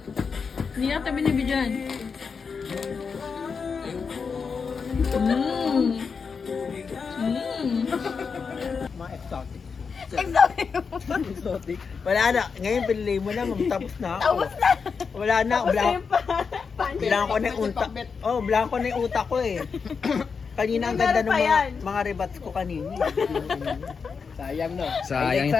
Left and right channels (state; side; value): quieter; right; 5.5 dB